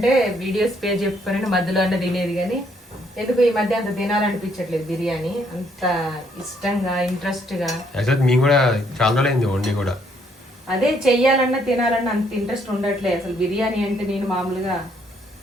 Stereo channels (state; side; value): normal; both; correlation 0.69